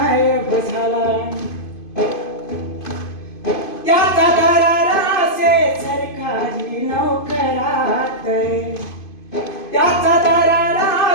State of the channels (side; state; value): right; late; 2.5 ms